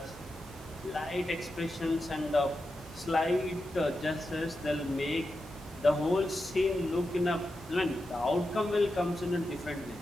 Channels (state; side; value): normal; both; correlation 0.89